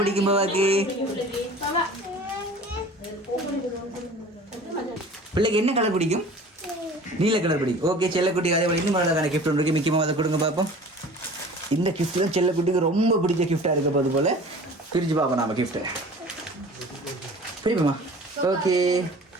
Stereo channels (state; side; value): normal; both; correlation 0.43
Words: பிடிக்கும் பாபாக்கு? பிள்ளைக்கு என்ன கலர் பிடிக்கும்? நீல கலர் பிடிக்கும். ஓகே, செல்லக்குட்டி அதே போல இன்னும் அழகான கிஃப்ட் ஒன்று இருக்கு. மிக்கி மாமா அதை கொடுங்க பார்ப்போம். இந்த கிஃப்ட் தான் செல்லக்குட்டிக்கு ரொம்ப பிடிச்ச கிஃப்டாக இருக்க போது போல. பிரித்து பார்ப்போம் நாம கிஃப்ட்டை. பிரிப்போமா? ஓகே,